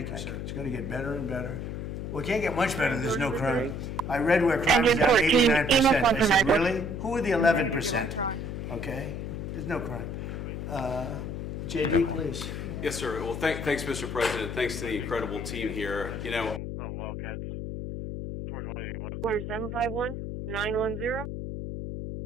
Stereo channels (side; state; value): left; noise; hum, 5 dB below the sound